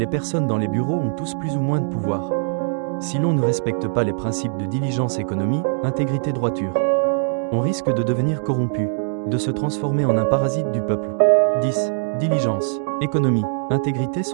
personnes dans les bureaux ont tous plus ou moins de pouvoir. Si l'on ne respecte pas les principes de diligence, économie, intégrité, droiture, on risque de devenir corrompu, de se transformer en un parasite du peuple. 10. Diligence, économie, intégrité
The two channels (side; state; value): left; silent; digital silence